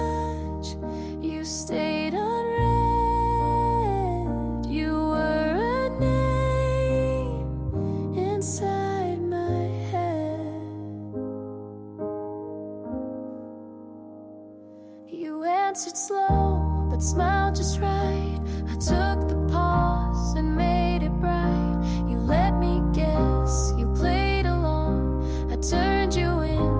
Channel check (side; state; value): both; identical; correlation 1.00